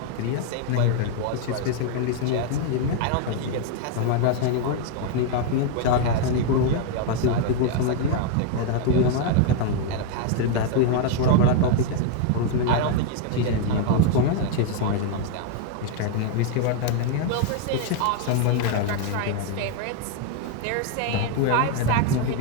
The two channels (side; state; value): both; different; correlation 0.00